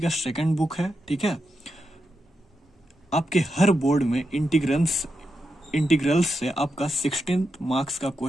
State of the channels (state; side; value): normal; both; correlation 0.86